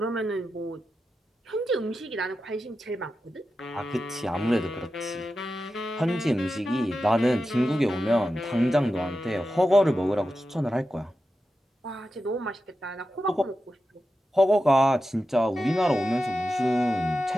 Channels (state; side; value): normal; both; correlation 0.91